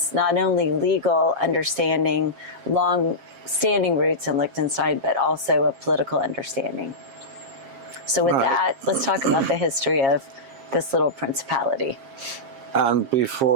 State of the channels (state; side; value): late; left; 7.4 ms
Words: not only legal understanding, long standing roots in Liechtenstein, but also a political understanding. So with that, let's talk about the history of this little principality. And